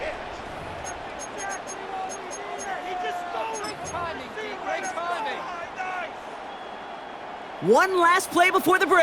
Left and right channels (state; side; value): identical; both; correlation 1.00